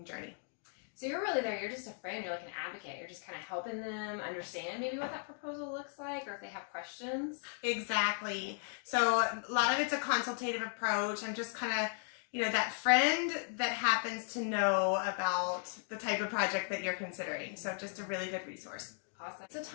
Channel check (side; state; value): right; silent; 53 dB below the other